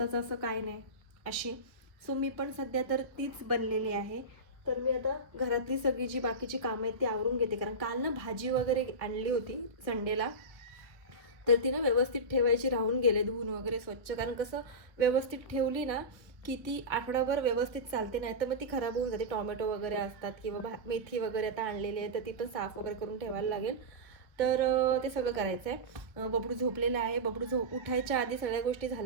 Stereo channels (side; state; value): left; late; 1.3 ms